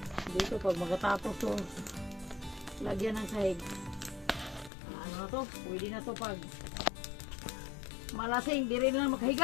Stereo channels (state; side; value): drops out; right; at 4.7 s